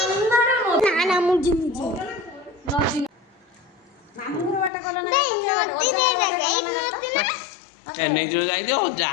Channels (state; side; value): drops out; right; at 4.7 s